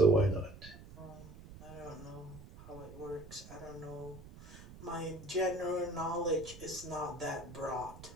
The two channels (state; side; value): noise; right; rumble, 16 dB below the sound